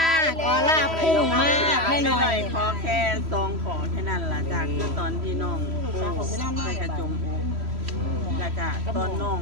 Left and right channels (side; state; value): left; late; 3.1 ms